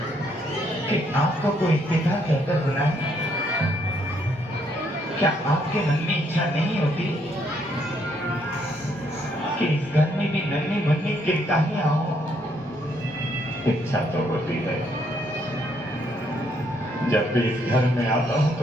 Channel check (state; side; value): normal; both; correlation 0.71